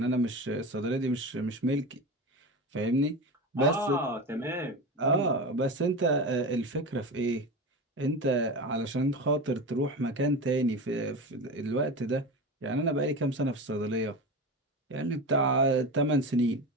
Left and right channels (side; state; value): both; normal; correlation 0.24